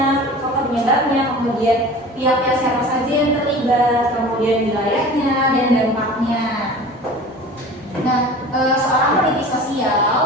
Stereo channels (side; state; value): both; normal; correlation 0.39